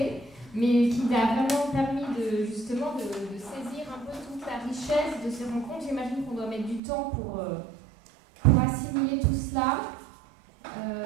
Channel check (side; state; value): left; drops out; at 6.8 s